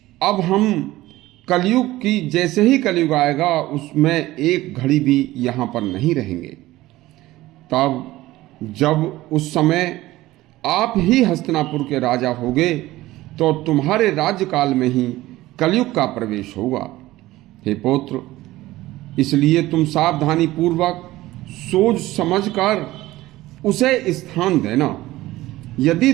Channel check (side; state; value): left; quieter; 17.1 dB